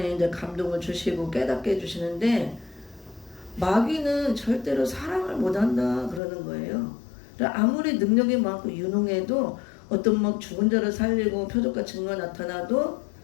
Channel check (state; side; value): drops out; right; at 6.2 s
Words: 이제 감동을 주시고 깨닫게 해주시는데 마귀는 절대로 사랑을 못한다 그러는 거예요. 아무리 능력이 많고 유능해도 어떤 막 죽은 자를 살리고 표적과 증거 나타나도